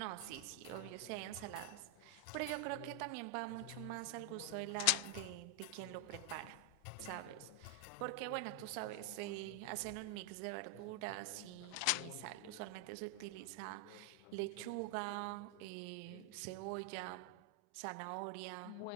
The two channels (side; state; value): both; different; correlation 0.00